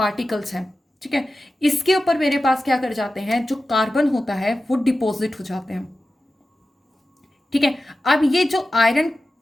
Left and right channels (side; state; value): both; normal; correlation 0.93